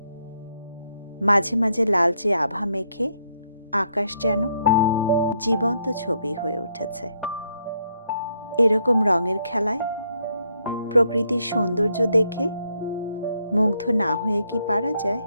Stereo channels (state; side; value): inverted; both; correlation -0.74